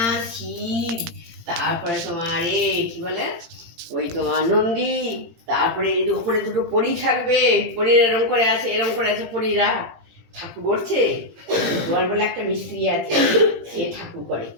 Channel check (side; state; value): left; late; 17 ms